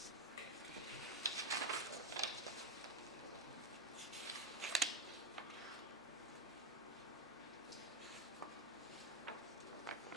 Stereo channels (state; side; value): noise; left; hum, 29 dB below the sound